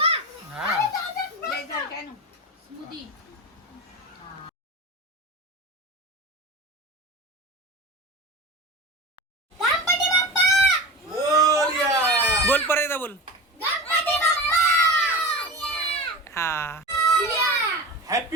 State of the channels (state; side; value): normal; both; correlation 0.29